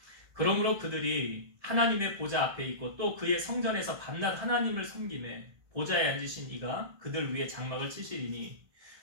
그러므로 그들이 하나님의 보좌 앞에 있고 또 그의 성전에서 밤낮 하나님을 섬기매 보좌에 앉으신 이가 그들 위에 장막을 치시리니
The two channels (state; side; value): late; left; 1.7 ms